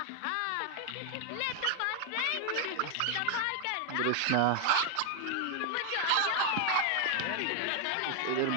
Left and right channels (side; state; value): both; different; correlation 0.01